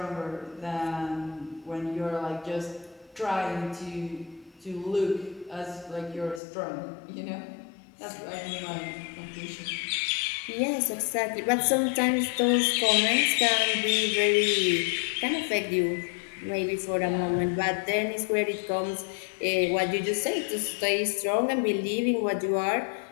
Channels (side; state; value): right; drops out; at 6.4 s